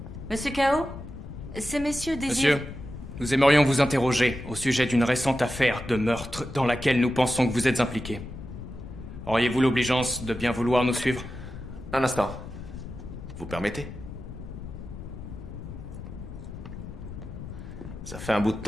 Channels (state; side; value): noise; left; rumble, 11 dB below the sound